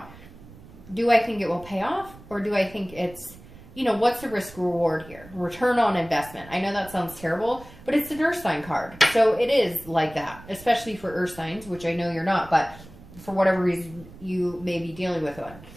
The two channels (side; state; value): right; noise; rumble, 19 dB below the sound